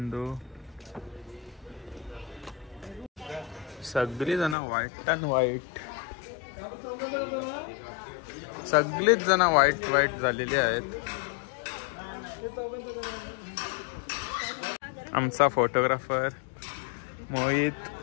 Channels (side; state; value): right; drops out; at 4.5 s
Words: सगळी जण व्हाईट अँड व्हाईट, सगळीच जण व्हाईट झालेली आहेत. आमचा फोटोग्राफर मोहित